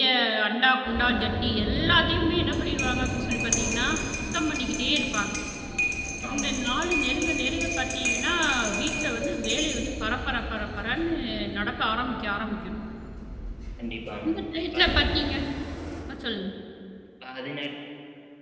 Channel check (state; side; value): identical; both; correlation 1.00